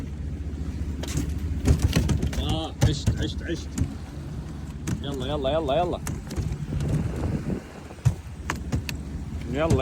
عشت. يلا يلا يلا يلا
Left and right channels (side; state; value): both; identical; correlation 1.00